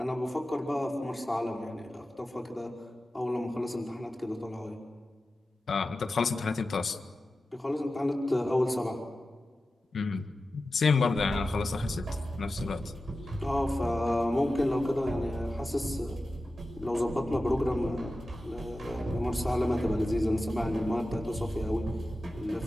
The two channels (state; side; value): normal; both; correlation 0.94